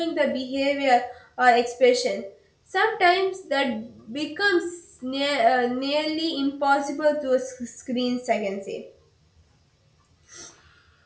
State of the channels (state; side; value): identical; both; correlation 1.00